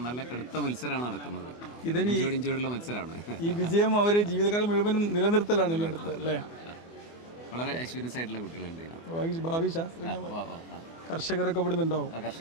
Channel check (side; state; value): right; late; 24 ms